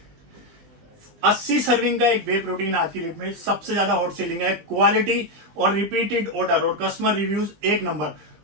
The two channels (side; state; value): left; late; 20 ms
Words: 80 सर्विंग का एक वे प्रोटीन आज की डेट में सबसे ज्यादा हॉट सेलिंग है। क्वालिटी और रिपीटेड ऑर्डर और कस्टमर रिव्यूज 1 नंबर।